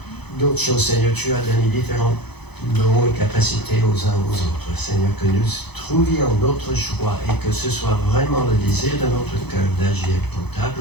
d'autres choses, Seigneur, tu as donné différents dons et capacités aux uns aux autres. Seigneur, que nous trouvions notre joie et que ce soit vraiment le désir de notre cœur d'agir pour ta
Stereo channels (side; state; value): right; late; 0.98 ms